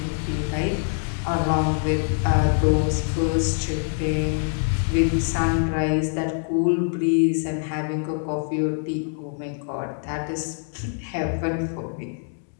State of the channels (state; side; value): silent; right; digital silence